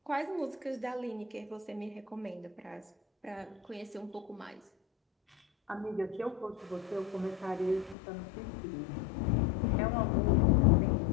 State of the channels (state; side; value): drops out; right; at 8.0 s